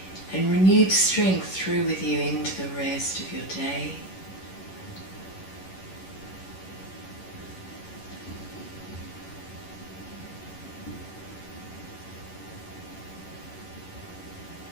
and renewed strength through with you into the rest of your day.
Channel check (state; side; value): late; right; 11 ms